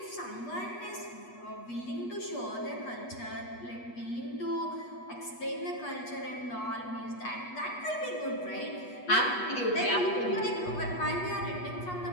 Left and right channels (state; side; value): late; right; 8.3 ms